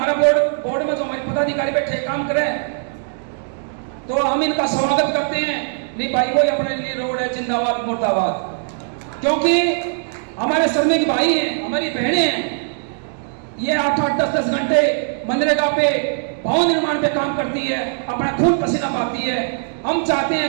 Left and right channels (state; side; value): silent; left; digital silence